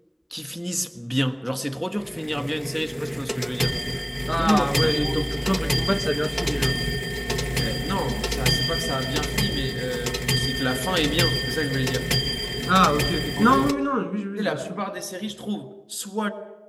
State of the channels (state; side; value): identical; both; correlation 1.00